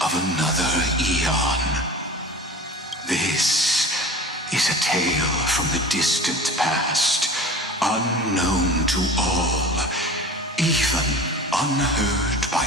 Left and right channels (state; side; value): normal; both; correlation 0.37